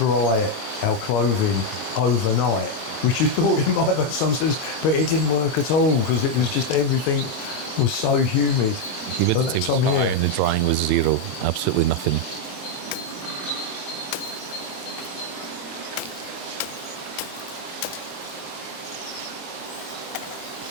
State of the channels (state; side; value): late; right; 23 ms